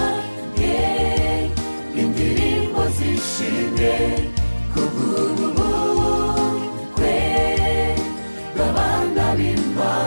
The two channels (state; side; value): inverted; both; correlation -1.00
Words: indirimbo zishimwe, kubw'ubukwe bw'abana